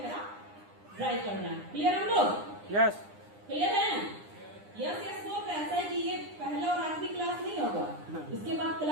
ड्राई करना है। क्लियर हम लोग? यस। क्लियर है? यस यस बोल रहे। ऐसा है कि ये पहला और आखिरी क्लास नहीं होगा, इसके बाद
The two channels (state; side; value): late; left; 9.9 ms